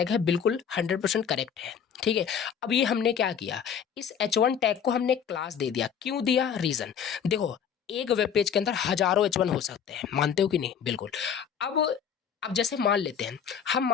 है, बिल्कुल 100% करेक्ट है, ठीक है। अब ये हमने क्या किया, इस H1 टैग को हमने क्लास दे दिया। क्यों दिया, रीजन देखो, एक वेब पेज के अंदर हजारों H1 हो सकते हैं, मानते हो कि नहीं, बिल्कुल। अब जैसे मान लेते हैं, हम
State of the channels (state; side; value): quieter; right; 7.8 dB